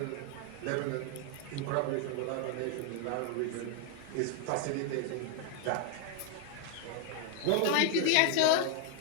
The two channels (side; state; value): both; different; correlation 0.00